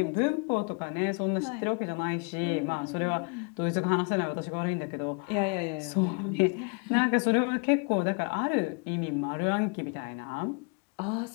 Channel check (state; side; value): quieter; right; 34.2 dB